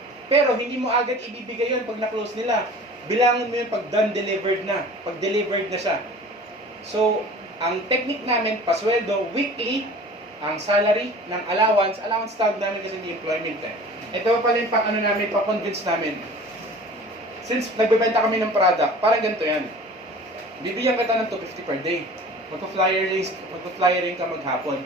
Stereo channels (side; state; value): both; normal; correlation 0.43